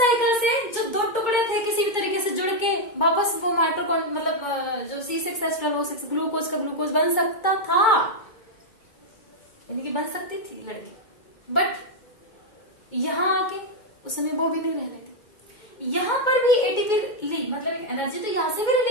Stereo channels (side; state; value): right; late; 2.2 ms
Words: से जो 2 टुकड़े थे किसी भी तरीके से जुड़ के वापस वो माइटोकॉन्ड्रिया मतलब जो C6H12O6 ग्लूकोज का ग्लूकोज बन सकता था, यानी कि बन सकती थी लड़की, बट यहां आके उस समय वो भी नहीं रह रही थी। यहां पर भी एटीपी ली, मतलब एक एनर्जी तो यहां से भी